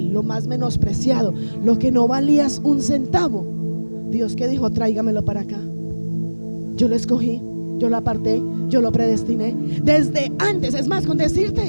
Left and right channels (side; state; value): both; inverted; correlation -1.00